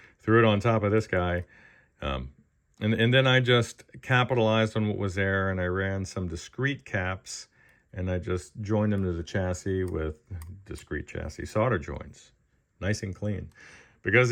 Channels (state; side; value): identical; both; correlation 1.00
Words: threw it on top of this guy. And then I just capitalized on what was there, and I ran some discrete caps, and I just joined them to the chassis with discrete chassis solder joints. Nice and clean. Because